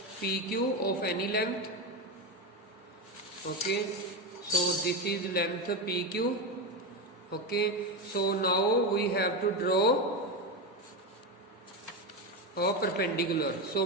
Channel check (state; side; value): normal; both; correlation 0.14